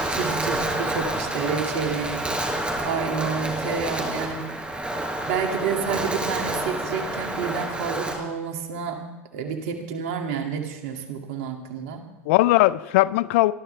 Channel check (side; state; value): both; normal; correlation 0.19